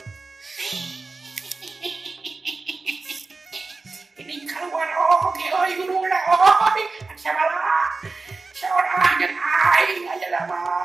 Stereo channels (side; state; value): left; quieter; 3.8 dB